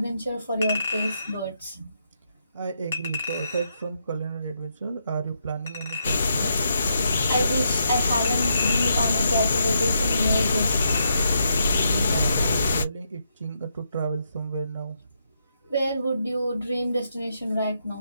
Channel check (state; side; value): inverted; both; correlation -0.79